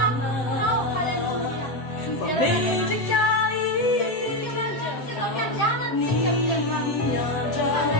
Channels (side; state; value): right; late; 7.5 ms